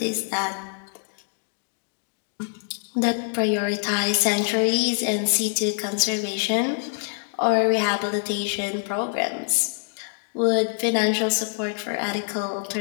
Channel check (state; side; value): silent; right; digital silence